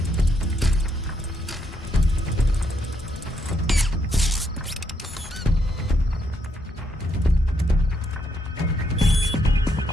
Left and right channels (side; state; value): both; normal; correlation 0.76